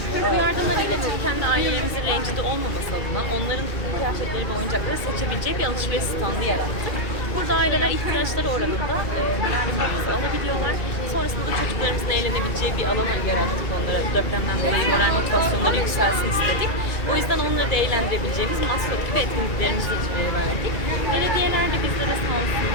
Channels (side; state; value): right; late; 2.4 ms